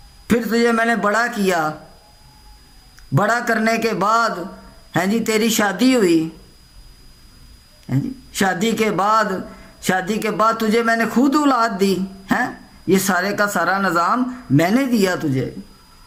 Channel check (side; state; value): both; identical; correlation 1.00